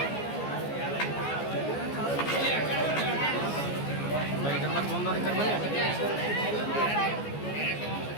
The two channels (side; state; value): right; late; 14 ms